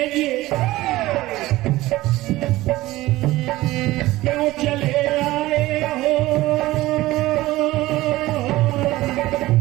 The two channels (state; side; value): quieter; left; 17.6 dB